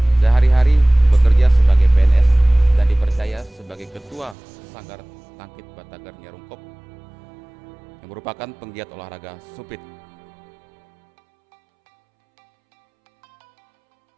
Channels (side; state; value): left; drops out; at 4.4 s